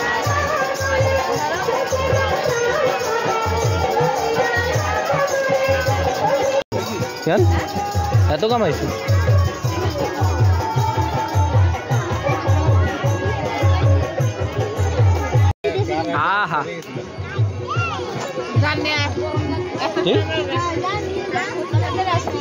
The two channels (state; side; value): identical; both; correlation 1.00